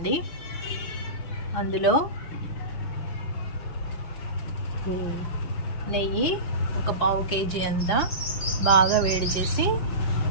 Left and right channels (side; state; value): right; late; 6.0 ms